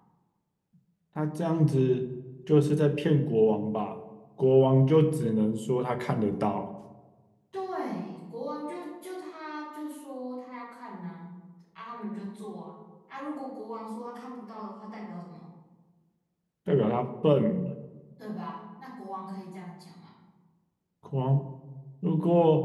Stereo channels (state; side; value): identical; both; correlation 1.00